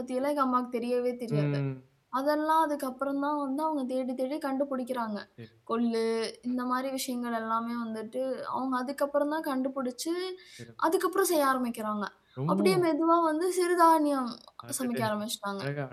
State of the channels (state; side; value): identical; both; correlation 1.00